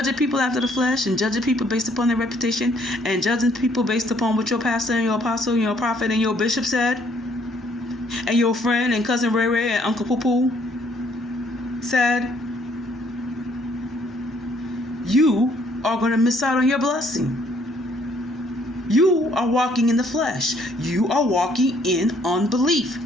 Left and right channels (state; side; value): normal; both; correlation 0.64